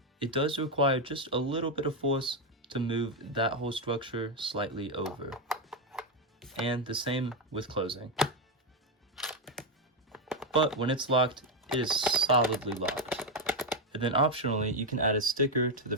It does require just a little bit of force to move that whole structure slightly over. And the same with closing. But when it's locked, it is solidly locked. And then optionally, you can add a sticker to the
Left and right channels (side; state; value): both; normal; correlation 0.05